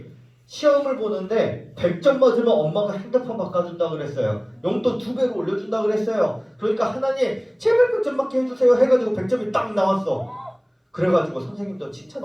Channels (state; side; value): identical; both; correlation 1.00